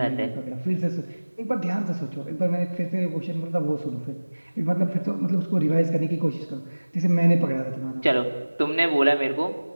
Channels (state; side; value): inverted; both; correlation -1.00